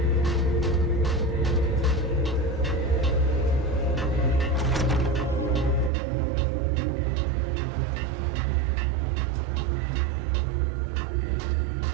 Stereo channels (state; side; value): drops out; left; at 5.9 s